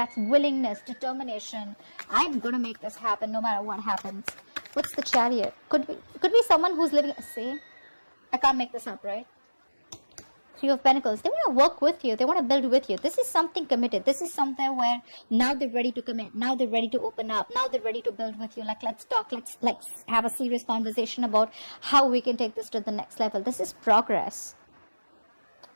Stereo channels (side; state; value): both; inverted; correlation -1.00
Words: willingness, determination. I'm going to make this happen no matter what happens. What's the Chariot? Could be someone who's living. See, I can't make this up, right? Three of Pentacles. They want to work with you. They want to build with you. This is something committed. This is something where now they're ready to commit. Now they're ready to open up. Now they're ready to build with you. Like, let's talk. Let's have a serious conversation about how we can take this to the next level. This is progress.